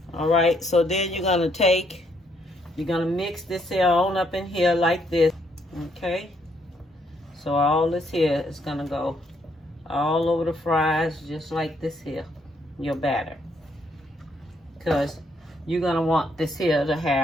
All right, so then you're going to mix this here on up in here like this, okay? So all this here is going to go all over the fries just like this here, your batter. Because you're going to want this here to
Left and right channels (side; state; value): both; normal; correlation 0.72